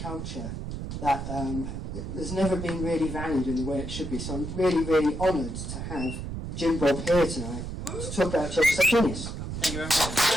culture that has never been really valued in the way it should be. So I'm really, really honoured to have Jim Bob here tonight to talk about Church of the Subgenius. Thank you very much.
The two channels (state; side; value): noise; right; rumble, 6 dB below the sound